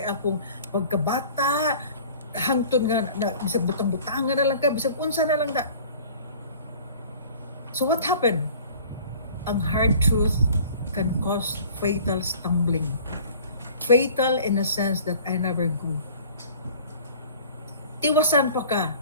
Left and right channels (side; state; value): both; inverted; correlation -0.47